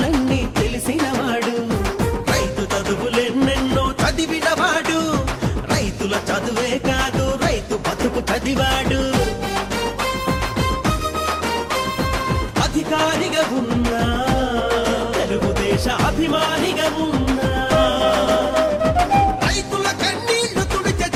తెలిసినవాడు. రైతు చదువులెన్నెన్నో చదివినవాడు. రైతుల చదువే కాదు రైతు బతుకు చదివాడు. అధికారిగా ఉన్నా, తెలుగుదేశ అభిమానిగా ఉన్నా, రైతుల కన్నీళ్లు తుడిచే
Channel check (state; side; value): identical; both; correlation 1.00